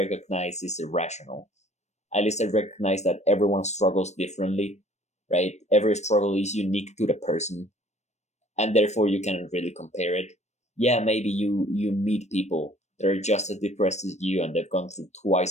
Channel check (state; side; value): late; right; 0.33 ms